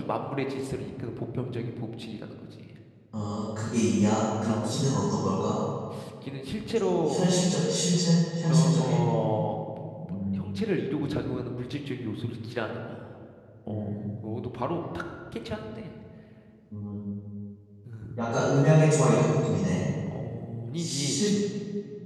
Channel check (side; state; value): both; identical; correlation 1.00